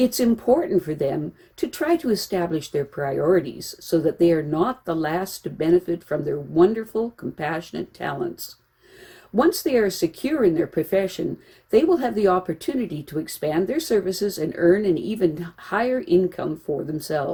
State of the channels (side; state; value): both; identical; correlation 1.00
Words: important for them to try to establish their priorities so that they are not the last to benefit from their wonderful, compassionate talents. Once they are secure in their profession, they will have the opportunity to expand their services and earn an even higher income for